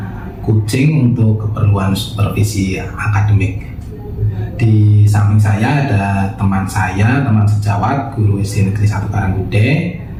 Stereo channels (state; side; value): identical; both; correlation 1.00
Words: coaching untuk keperluan supervisi akademik. Di samping saya ada teman sejawat, guru SD Negeri 1 Karanggude.